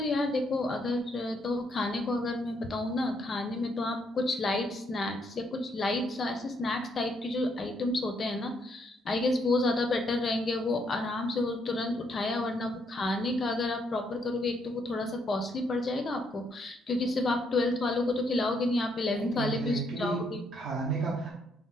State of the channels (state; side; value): normal; both; correlation 0.74